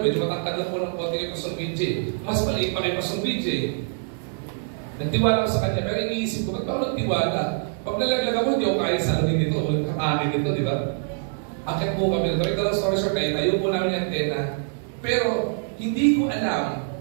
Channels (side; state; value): left; silent; digital silence